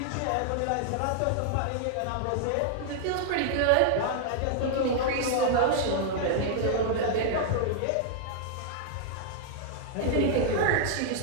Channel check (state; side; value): different; both; correlation 0.00